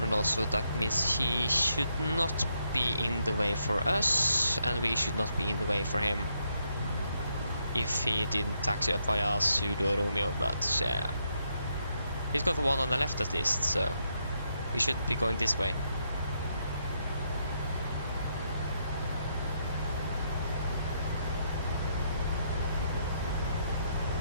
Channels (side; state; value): both; inverted; correlation -0.77